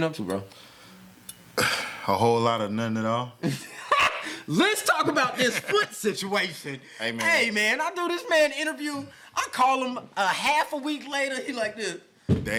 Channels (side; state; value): both; identical; correlation 1.00